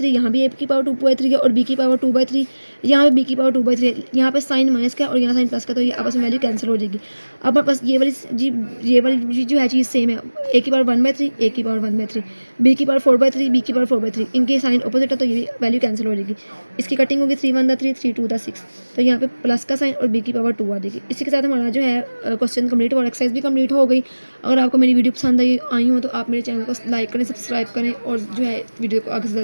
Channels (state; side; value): inverted; both; correlation -1.00